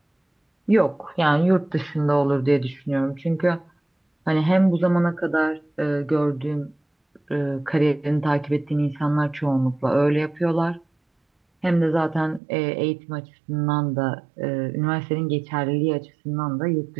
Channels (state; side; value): drops out; left; at 12.4 s